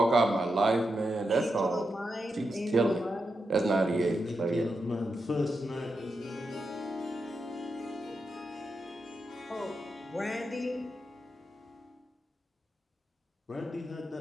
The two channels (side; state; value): both; normal; correlation 0.86